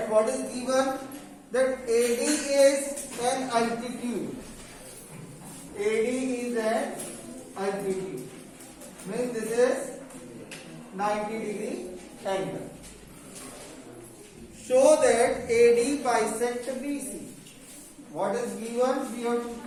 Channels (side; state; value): both; identical; correlation 1.00